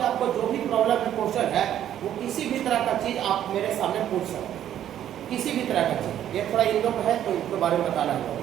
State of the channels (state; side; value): quieter; left; 11.0 dB